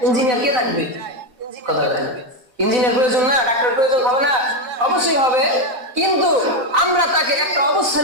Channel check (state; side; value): late; left; 4.0 ms